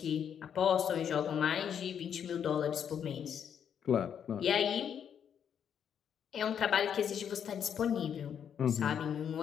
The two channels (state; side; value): quieter; right; 8.3 dB